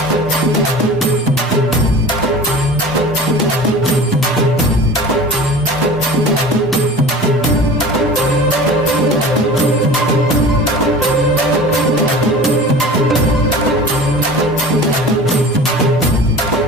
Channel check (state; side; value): normal; both; correlation 0.38